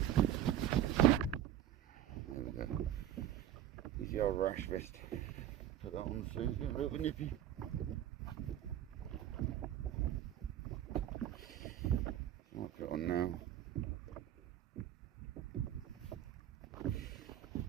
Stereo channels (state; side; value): quieter; left; 11.3 dB